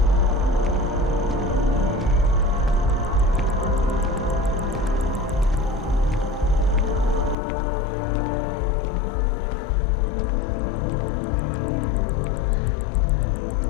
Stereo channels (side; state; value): right; drops out; at 7.4 s